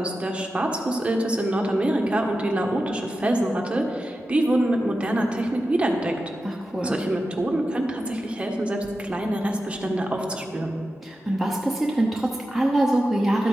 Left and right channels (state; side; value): normal; both; correlation 0.92